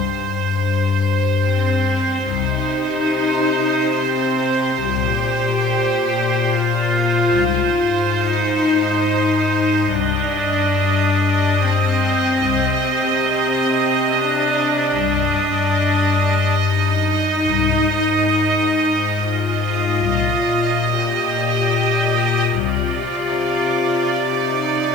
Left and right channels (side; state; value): left; noise; hiss, 27 dB below the sound